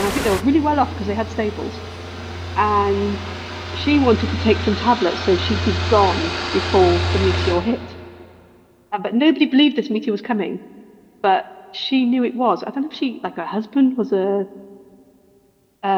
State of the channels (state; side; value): identical; both; correlation 1.00